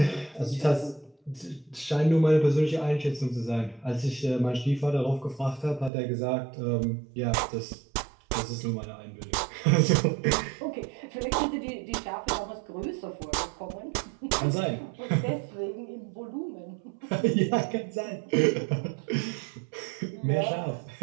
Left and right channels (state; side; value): drops out; left; at 5.9 s